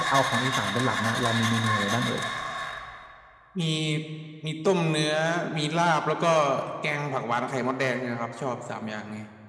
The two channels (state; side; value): identical; both; correlation 1.00